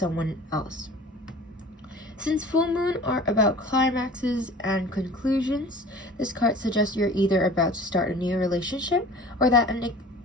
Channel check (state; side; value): normal; both; correlation 0.43